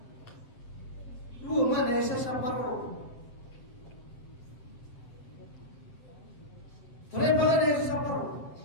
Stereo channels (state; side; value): late; right; 7.7 ms